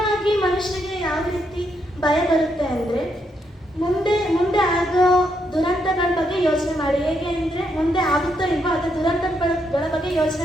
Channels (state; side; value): normal; both; correlation 0.78